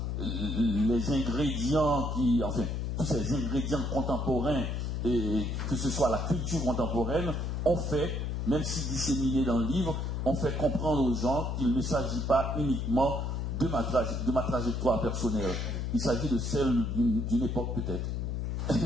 les ingrédients enfin, tous ces ingrédients contemporains et que ce soit la culture contemporaine, on fait, même si disséminé dans le livre, on fait comprendre aux gens qu'il ne s'agit pas uniquement de ma trajectoire personnelle. Il s'agit de celle d'une époque peut-être.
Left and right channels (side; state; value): left; noise; hum, 1 dB below the sound